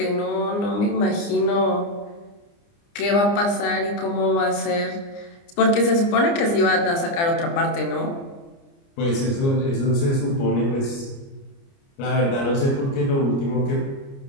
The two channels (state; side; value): late; right; 29 ms